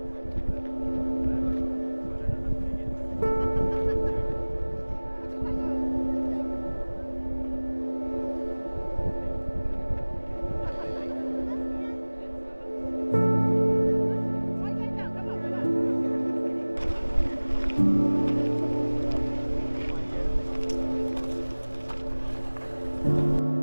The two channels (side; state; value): both; inverted; correlation -1.00